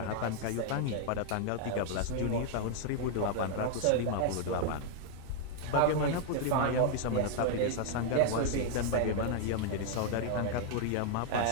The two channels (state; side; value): different; both; correlation 0.00